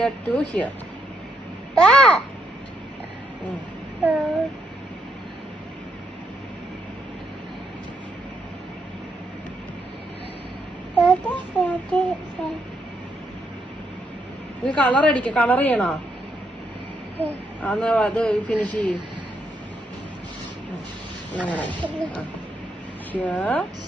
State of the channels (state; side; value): normal; both; correlation 0.77